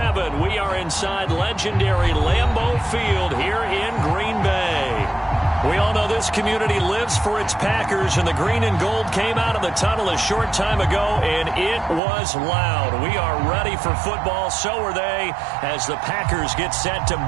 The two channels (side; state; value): left; drops out; at 12.0 s